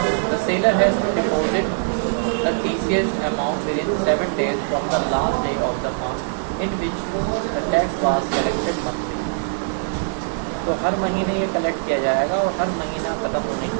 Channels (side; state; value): left; silent; digital silence